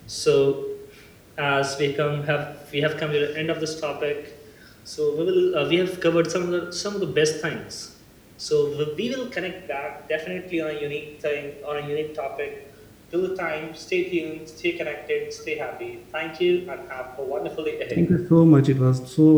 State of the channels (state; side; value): identical; both; correlation 1.00